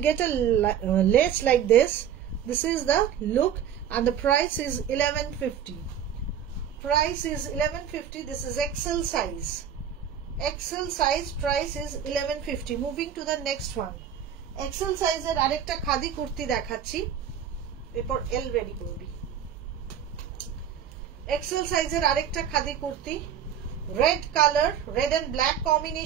get a lace like this. This is the look, and the price is 1150. Price is 1150. This is XL size. XL size, price is 1150. Moving to the next one. XL সাইজের আরেকটা খাদি কুর্তি দেখাচ্ছি, এরপর এল রেডি করবি। এক্সেল সাইজের আরেকটা খাদি kurti, red color, red and black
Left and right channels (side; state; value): left; quieter; 8.9 dB